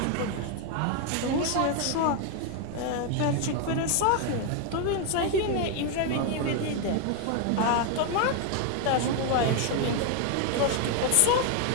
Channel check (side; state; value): both; different; correlation 0.01